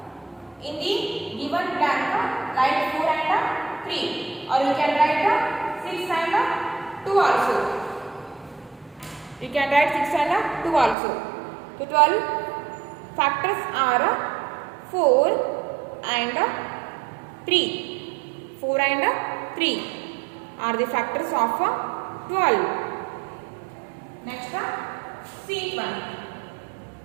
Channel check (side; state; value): left; drops out; at 11.0 s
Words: In the given blank, write 4 and 3, or you can write 6 and 2 also. You can write 6 and 2 also. So 12 factors are 4 and 3. 4 and 3 are the factors of 12. Next, sheet 1.